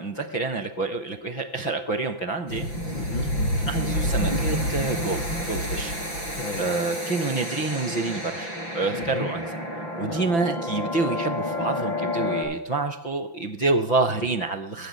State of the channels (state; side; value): late; right; 5.9 ms